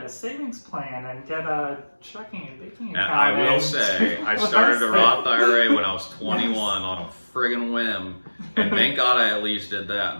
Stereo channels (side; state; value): both; inverted; correlation -1.00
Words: a savings plan and get a checking and banking account. And I will say, I started a Roth IRA when I was 21 on a friggin' whim. And thank God I at least did that.